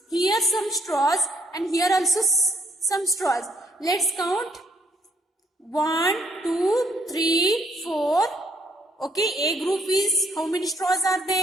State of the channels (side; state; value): both; normal; correlation 0.67